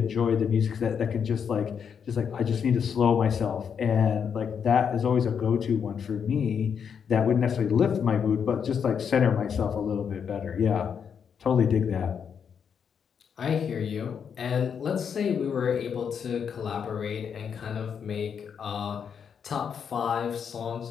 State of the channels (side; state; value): right; quieter; 7.2 dB